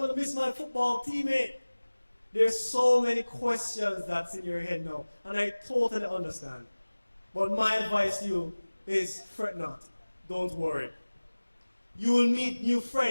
to miss my football teammate. There's so many questions that's in your head now, and I totally understand. But my advice to you is fret not. Don't worry. You will meet new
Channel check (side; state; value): both; inverted; correlation -1.00